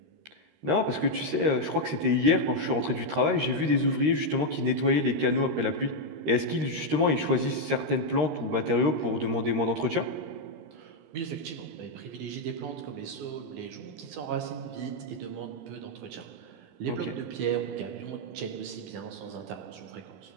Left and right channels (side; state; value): left; late; 13 ms